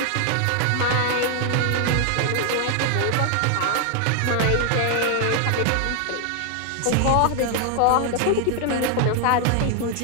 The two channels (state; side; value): different; both; correlation 0.00